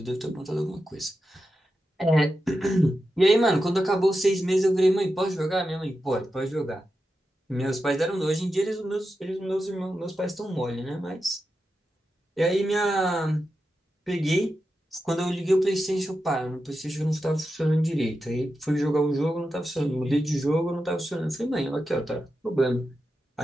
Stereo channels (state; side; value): normal; both; correlation 0.90